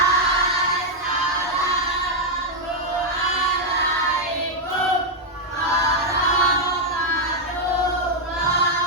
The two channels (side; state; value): both; normal; correlation -0.01